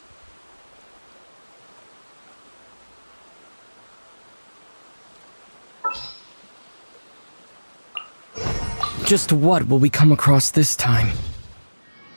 Just what will we come across this time?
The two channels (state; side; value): inverted; both; correlation -1.00